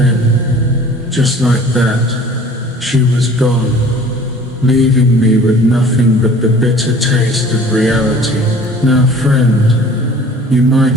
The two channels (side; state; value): both; normal; correlation 0.48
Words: just like that, she was gone, leaving me with nothing but the bitter taste of reality. Now friend, you